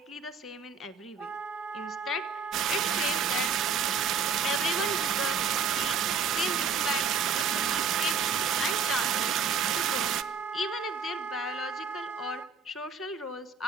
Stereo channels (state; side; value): quieter; left; 5.7 dB